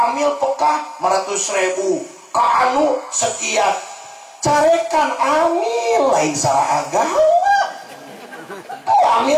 amil pekah 500.000 ka anu sekian carekan amil lain salah agama.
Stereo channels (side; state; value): both; identical; correlation 1.00